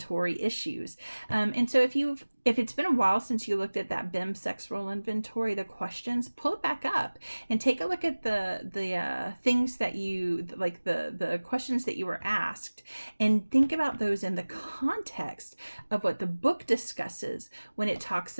issues. And so if it's been a while since you looked at that BIM sex role inventory, the questions, pull it back up and take a look at the things that you like, the questions that you were asked, and think about those in the context of what the book discusses when it talks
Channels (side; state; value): both; inverted; correlation -1.00